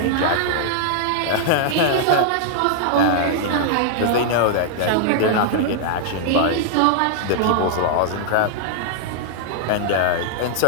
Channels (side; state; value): both; different; correlation -0.01